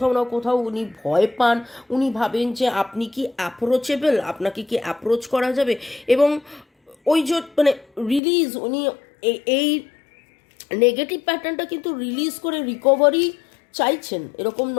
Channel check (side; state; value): right; drops out; at 8.2 s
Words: না কোথাও উনি ভয় পান, উনি ভাবেন যে আপনি কি অ্যাপ্রোচেবল, আপনাকে কি অ্যাপ্রোচ করা যাবে, এবং ওই যে মানে রিলিজ উনি এই নেগেটিভ প্যাটার্নটা কিন্তু রিলিজ করে রিকভারি চাইছেন। এরকম